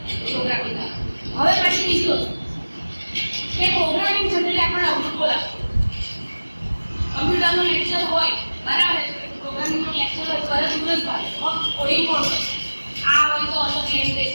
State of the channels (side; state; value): both; inverted; correlation -1.00